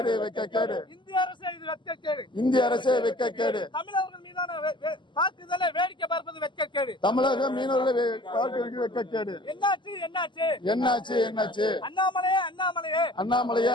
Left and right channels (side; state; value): right; late; 0.23 ms